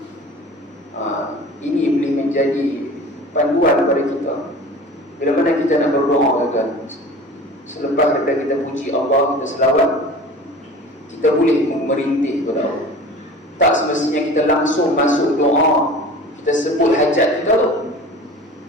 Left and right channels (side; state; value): both; normal; correlation 0.39